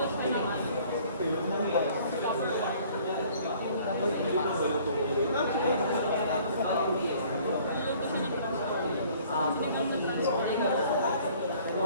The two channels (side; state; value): both; inverted; correlation -0.55